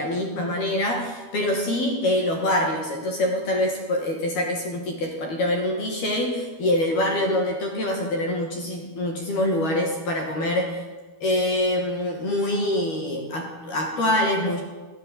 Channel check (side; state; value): right; late; 12 ms